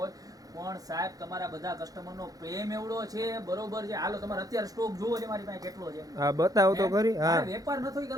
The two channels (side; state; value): left; late; 0.18 ms